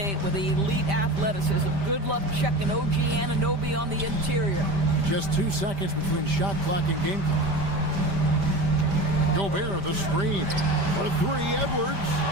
with elite athleticism. Good luck checking OG Anunoby on the interior. Just 2 seconds between shot clock and game clock. Gobert, the screen. For 3, Edwards.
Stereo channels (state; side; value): late; left; 5.1 ms